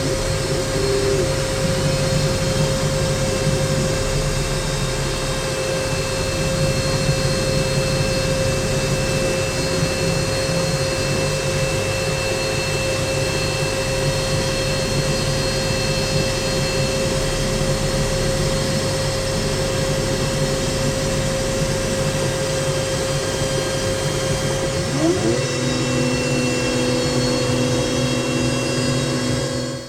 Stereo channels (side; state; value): both; identical; correlation 1.00